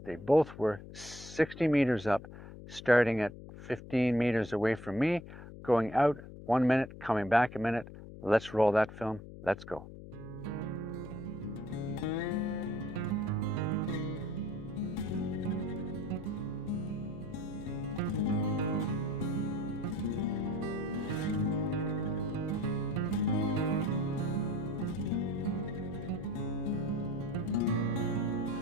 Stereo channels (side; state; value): left; noise; hum, 14 dB below the sound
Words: they both were 60 meters up, starting at 15 meters away from me, going out 1 minute, coming back a minute. Let's roll that film. Let's go.